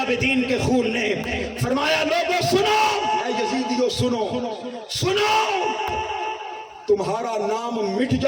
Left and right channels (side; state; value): both; identical; correlation 1.00